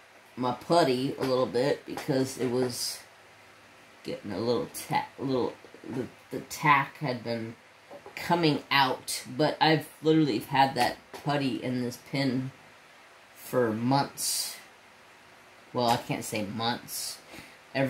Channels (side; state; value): both; identical; correlation 1.00